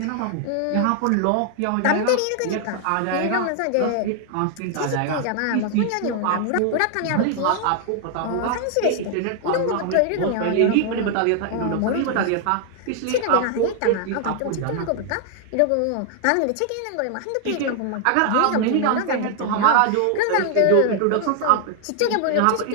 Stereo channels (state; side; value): different; both; correlation 0.00